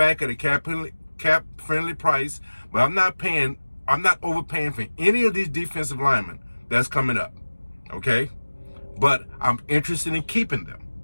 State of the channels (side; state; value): both; inverted; correlation -1.00